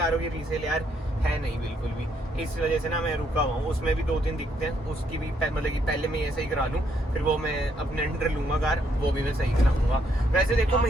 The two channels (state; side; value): normal; both; correlation 0.73